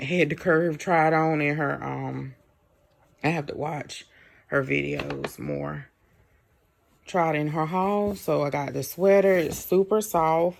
Head to Curve tried on in her I have to watch her videos more. Tried in her haul. So I got this sweater. It's super soft.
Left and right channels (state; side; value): identical; both; correlation 1.00